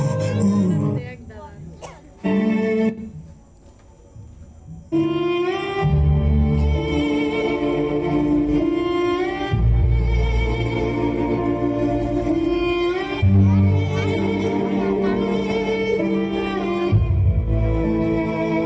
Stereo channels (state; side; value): identical; both; correlation 1.00